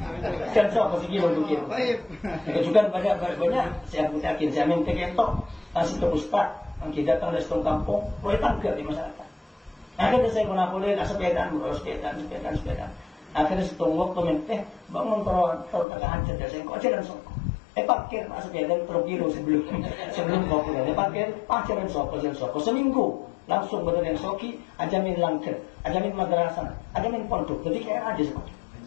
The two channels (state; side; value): drops out; right; at 15.9 s